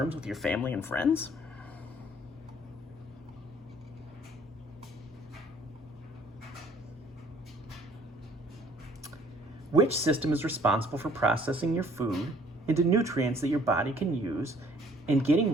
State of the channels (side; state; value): both; normal; correlation 0.58